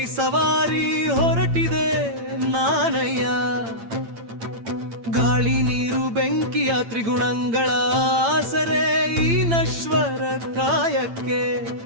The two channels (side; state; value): left; late; 8.8 ms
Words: ಸವಾರಿ ಹೊರಟಿದೆ ನಾನಯ್ಯ. ಗಾಳಿ ನೀರು ಬೆಂಕಿಯ ತ್ರಿಗುಣಗಳ ಆಸರೆ ಈ ನಶ್ವರ ಕಾಯಕ್ಕೆ.